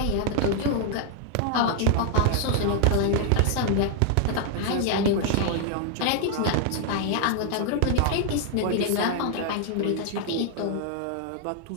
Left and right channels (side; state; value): both; different; correlation 0.00